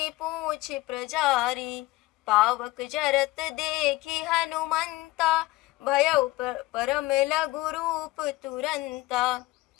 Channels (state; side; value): quieter; right; 19.2 dB